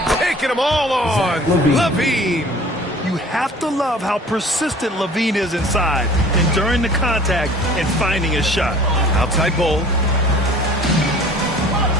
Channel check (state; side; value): normal; both; correlation 0.48